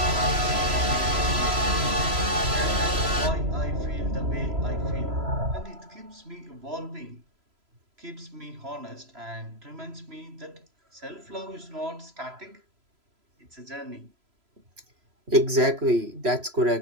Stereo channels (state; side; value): late; left; 3.0 ms